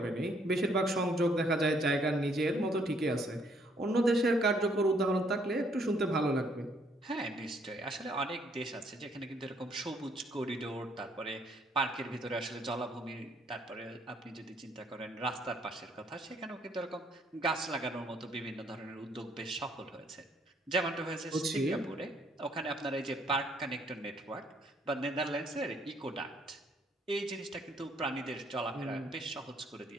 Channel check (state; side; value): normal; both; correlation 0.67